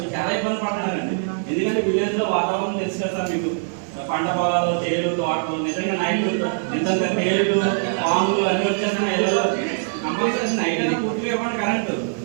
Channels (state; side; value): silent; left; 64 dB below the other